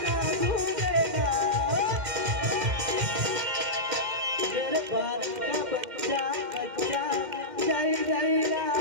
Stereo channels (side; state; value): left; late; 2.1 ms